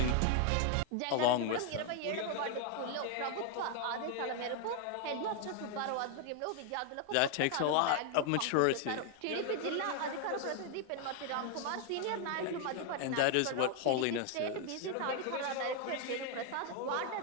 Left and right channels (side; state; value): both; different; correlation 0.00